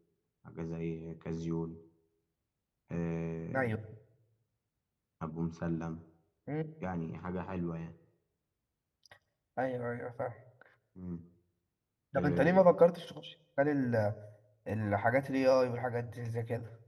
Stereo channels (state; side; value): identical; both; correlation 1.00